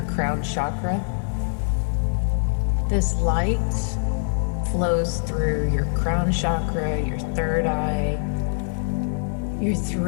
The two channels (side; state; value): right; silent; digital silence